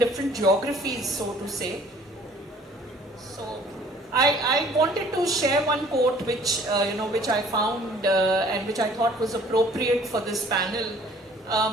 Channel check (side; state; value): both; normal; correlation 0.54